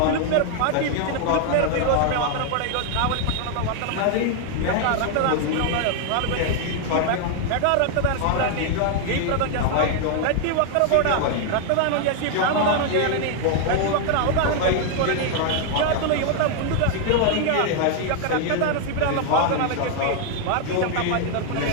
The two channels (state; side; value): different; both; correlation 0.00